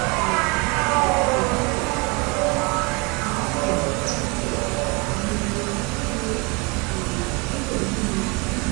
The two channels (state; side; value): quieter; left; 28.9 dB